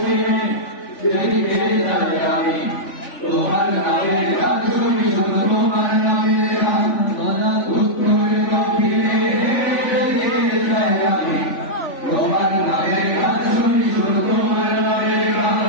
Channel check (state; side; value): late; right; 3.5 ms